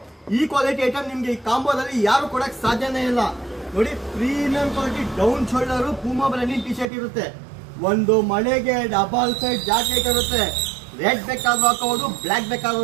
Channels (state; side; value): drops out; left; at 6.9 s